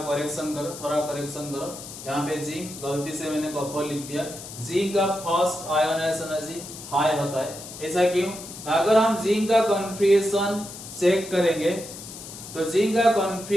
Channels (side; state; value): left; noise; hiss, 13 dB below the sound